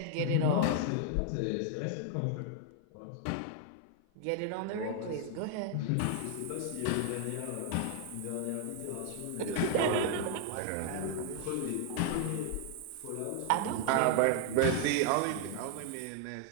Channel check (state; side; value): different; both; correlation 0.00